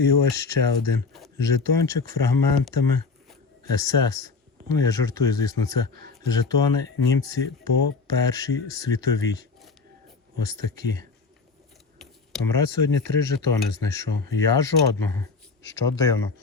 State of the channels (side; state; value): right; quieter; 4.4 dB